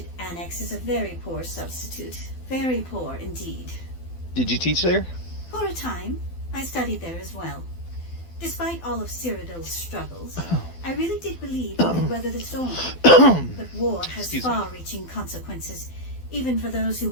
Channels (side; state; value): right; late; 12 ms